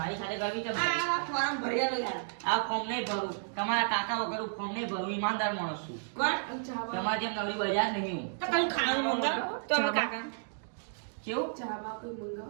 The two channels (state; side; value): silent; left; digital silence